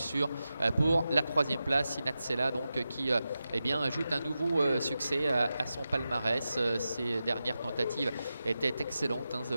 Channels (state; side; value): inverted; both; correlation -0.92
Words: Pour la troisième place, Inatsela donc qui eh bien, ajoute un nouveau succès à son palmarès. Ses dernières tentatives étaient excellentes